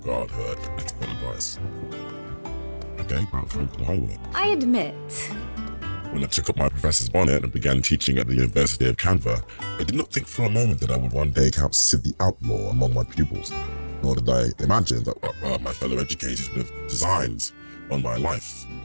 her expert advice. Okay, back to the highway. I admit, When I took up my professor's bonnet and began teaching at the University of Canva, I did not think for a moment that I would one day count Sid the Outlaw among my pupils, nor did I imagine that my fellow educators would have designs on my life.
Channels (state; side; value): inverted; both; correlation -1.00